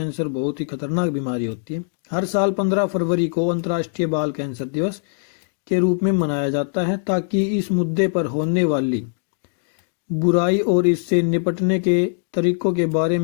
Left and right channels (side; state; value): right; silent; digital silence